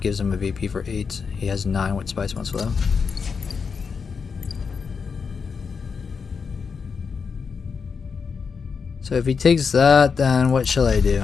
him a VP for 8. He has 9 with Spice Must Flow. So if he takes that, then what shall I do?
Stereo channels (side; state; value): right; quieter; 5.6 dB